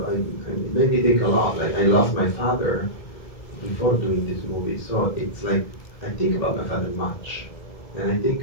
made me think a lot. Like, I lost my father before doing this movie, so it's like I think about my father much, and I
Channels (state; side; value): late; right; 1.7 ms